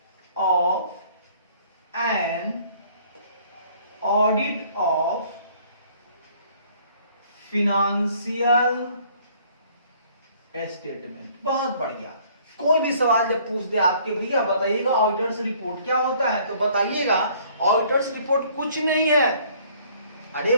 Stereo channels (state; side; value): inverted; both; correlation -0.58